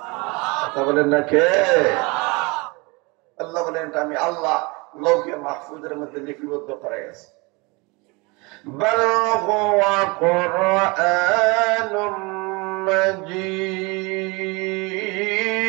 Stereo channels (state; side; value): quieter; left; 27.0 dB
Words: কথা বলেন না কে? আল্লাহ বলেন এটা আমি আল্লাহ লৌহে মাহফুজের মধ্যে লিপিবদ্ধ করে গেছি। بل هو قرآن مجيد